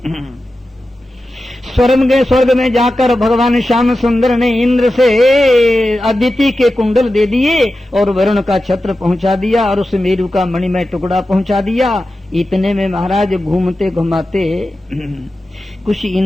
स्वर्ग में जाकर भगवान श्याम सुंदर ने इंद्र से अदिति के कुंडल दे दिए और वरुण का छत्र पहुंचा दिया और सुमेरु का मणिमय टुकड़ा पहुंचा दिया। इतने में महाराज घूमते घुमाते कुछ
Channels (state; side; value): normal; both; correlation 0.93